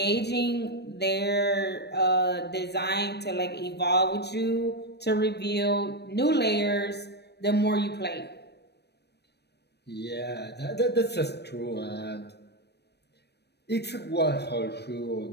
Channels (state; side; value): late; right; 0.49 ms